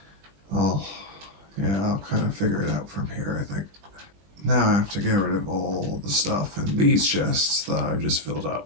I'll kind of figure it out from here, I think. Now I have to get rid of all the stuff in these chests that I've just filled up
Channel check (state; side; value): late; left; 20 ms